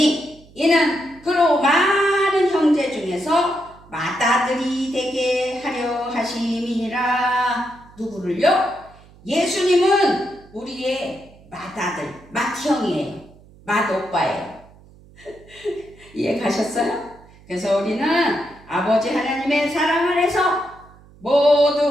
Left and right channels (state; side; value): noise; right; hum, 25 dB below the sound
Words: 이는 그로 많은 형제 중에서 맏아들이 되게 하려 하심이니라. 누구를요? 예수님은 우리의 맏아들, 맏형이에요. 맏오빠예요. 이해 가셨어요? 그래서 우리는 아버지 하나님의 사랑 안에서